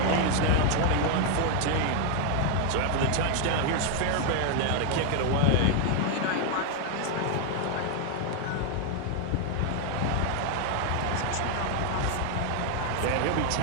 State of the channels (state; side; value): different; both; correlation 0.01